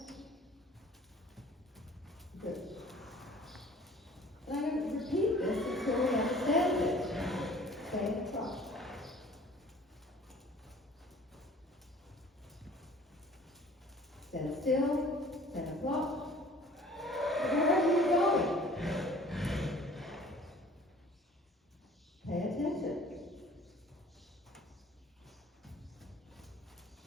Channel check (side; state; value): both; normal; correlation 0.50